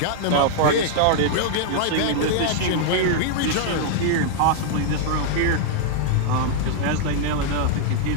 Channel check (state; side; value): different; both; correlation -0.01